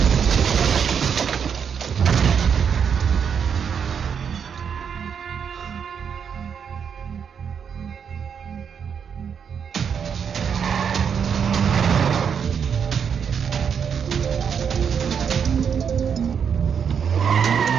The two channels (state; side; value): quieter; left; 7.2 dB